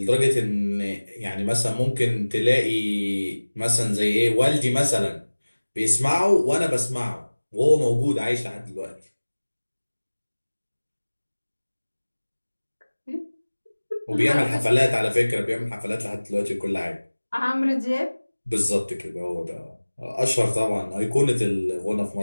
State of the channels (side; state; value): both; inverted; correlation -1.00